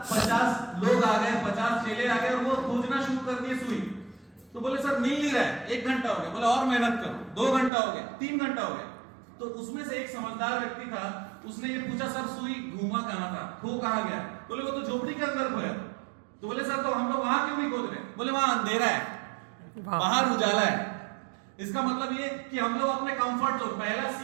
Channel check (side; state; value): left; drops out; at 7.7 s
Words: 50 लोग आ गए, 50 चेले आ गए और वो खोजना शुरू कर दिए सुई। तो बोले सर मिल नहीं रहा है, 1 घंटा हो गया। बोले और मेहनत करो, 2 घंटा हो गया, 3 घंटा हो गया। तो उसमें से एक समझदार व्यक्ति था, उसने ये पूछा सर सुई घूमा कहां था, खो कहां गया? बोले वो तो झोपड़ी के अंदर खोया। तो बोले सर तो हम लोग वहां क्यों नहीं खोद रहे? बोले वहां अंधेरा है, बाहर उजाला है। इसका मतलब ये कि हम लोग अपने कंफर्ट जोन, पहला